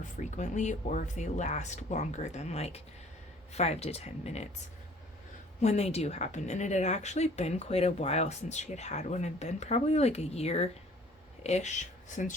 frequently, or if they last longer than like 5 to 10 minutes when they do happen. And it had actually been quite a while since she had one. It had been probably like a year-ish since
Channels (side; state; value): both; normal; correlation 0.54